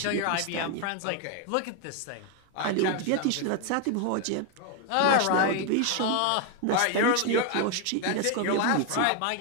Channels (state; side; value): different; both; correlation 0.01